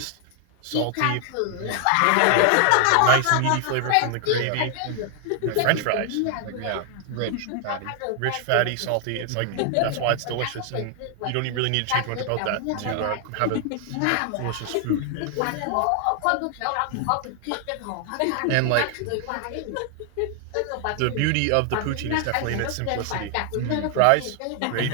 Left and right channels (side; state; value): both; different; correlation 0.00